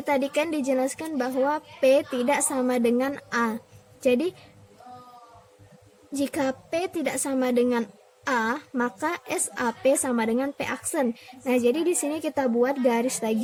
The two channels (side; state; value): both; identical; correlation 1.00